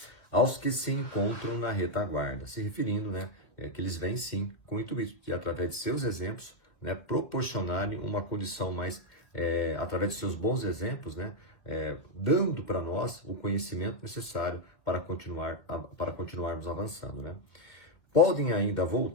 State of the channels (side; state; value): right; late; 2.2 ms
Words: aos que se encontram na retaguarda, se referindo, né, que eles vêm sim com o intuito de, através de seus exemplos, né, proporcionarem uma condição mais, através de seus bons exemplos, né, dando para nós o conhecimento necessário para continuarmos avançando, né. Podem ainda